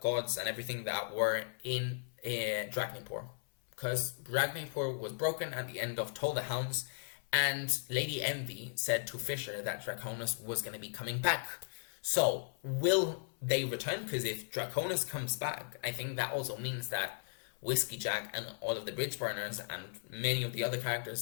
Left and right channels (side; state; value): right; silent; 53 dB below the other